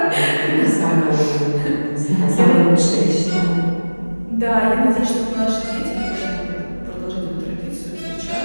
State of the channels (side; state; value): both; inverted; correlation -1.00